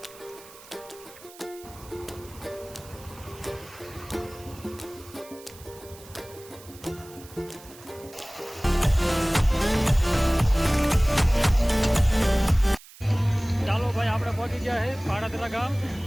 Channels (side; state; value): right; noise; hiss, 20 dB below the sound